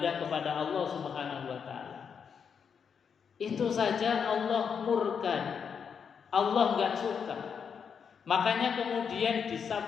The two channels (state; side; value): quieter; right; 6.8 dB